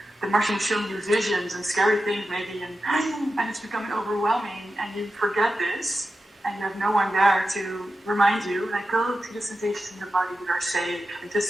the Martian will show you visions and scary things maybe, and it's becoming overwhelming, and you forget this, and you have no one there to remind you, like, go to the sensations in the body that are safe, and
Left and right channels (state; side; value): normal; both; correlation 0.92